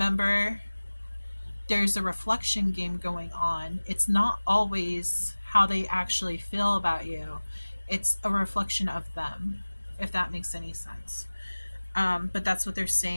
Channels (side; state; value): both; inverted; correlation -1.00